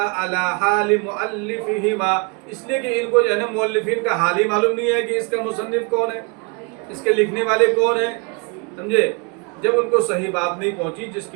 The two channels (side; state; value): left; quieter; 32.0 dB